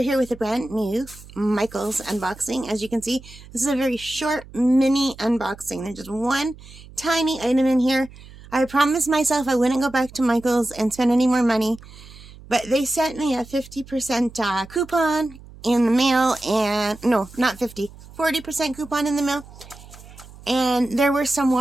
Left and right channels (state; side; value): noise; right; hum, 19 dB below the sound